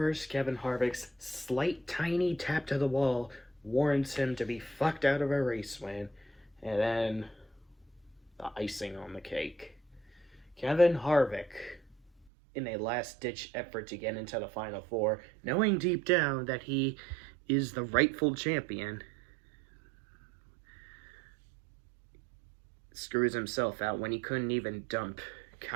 Kevin Harvick's slight tiny tap to the wall warrants him to be fucked out of a race win. And then, the icing on the cake. Kevin Harvick, in a last-ditch effort to get into the Final Four, knowing deep down that he is the rightful champion, screws himself out when he couldn't even dump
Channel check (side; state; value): left; drops out; at 12.1 s